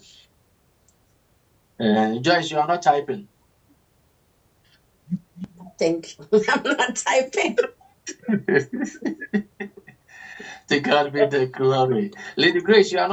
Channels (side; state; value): both; identical; correlation 1.00